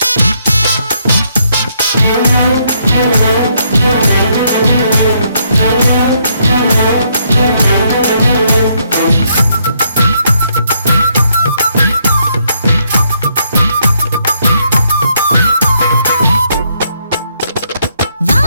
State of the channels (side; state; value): both; inverted; correlation -0.73